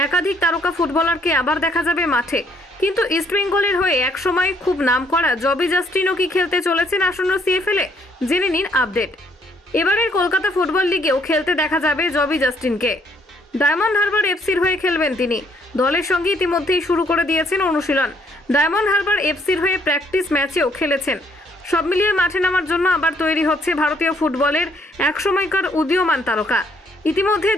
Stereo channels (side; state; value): both; normal; correlation 0.67